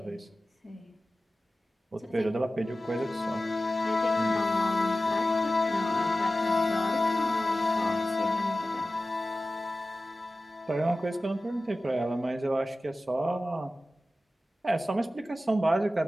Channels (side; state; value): both; normal; correlation 0.95